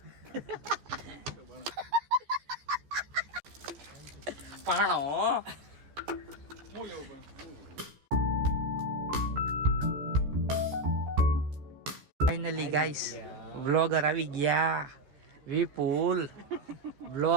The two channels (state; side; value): late; left; 14 ms